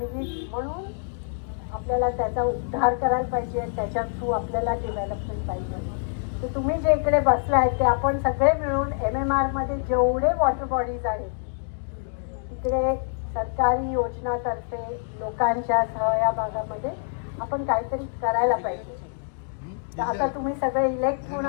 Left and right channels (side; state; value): right; silent; digital silence